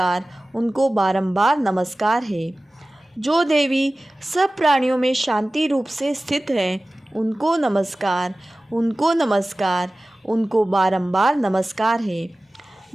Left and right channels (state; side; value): normal; both; correlation 0.97